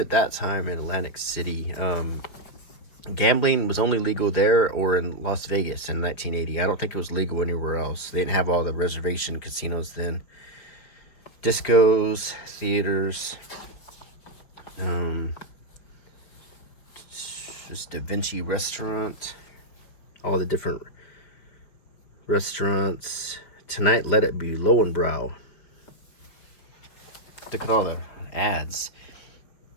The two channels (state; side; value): late; right; 5.3 ms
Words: that time in Atlantic City, gambling was only legal there or in Las Vegas in 1980. I don't think it was legal anywhere else. They didn't have all the reservation casinos then. Discos, theaters, just Da Vinci Restaurant, all the different restaurants. Tonight, Let It Be, Lowenbrow. Look at all the ads.